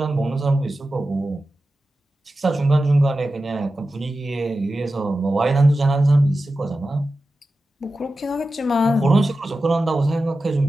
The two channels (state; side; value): normal; both; correlation 0.93